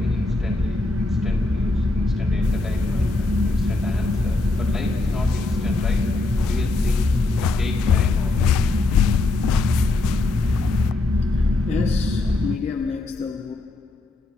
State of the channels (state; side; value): quieter; right; 3.1 dB